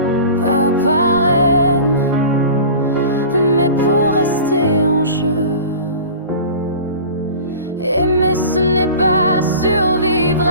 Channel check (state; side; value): inverted; both; correlation -0.38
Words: pas par haine, mais pour rester en jeu. Aimer ce n'est pas survivre